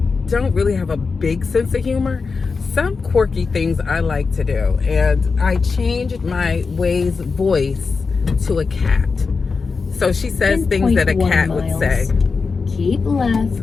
don't really have a big sense of humor, some quirky things I like to do. And I changed my Waze voice to a cat. So she says things that a 10.1 cat would say. Keep left.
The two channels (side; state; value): right; quieter; 4.7 dB